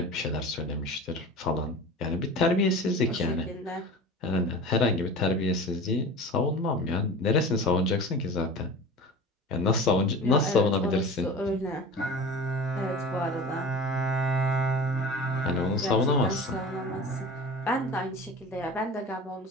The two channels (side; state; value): both; normal; correlation 0.35